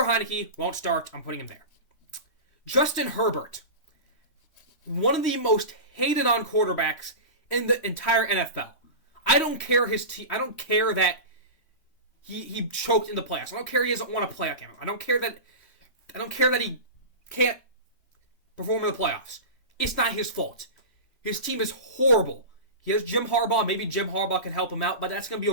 Heineke won't start. I'm putting him there. Justin Herbert, one of the most hated on quarterbacks in the entire NFL. I don't care his team. I don't care that he choked in the playoffs. I don't care he doesn't want to play again. I don't care that he can't perform in the playoffs. It's not his fault. His team is horrible. He has Jim Harbaugh. Maybe Jim Harbaugh can help him out, but that's going to be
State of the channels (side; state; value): right; late; 3.1 ms